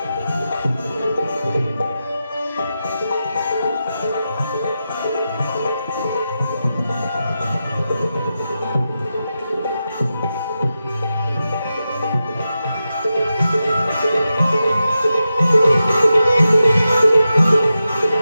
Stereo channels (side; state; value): both; inverted; correlation -0.90